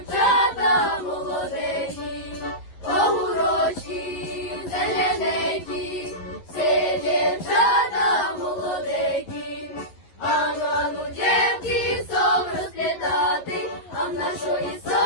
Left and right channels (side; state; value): right; late; 11 ms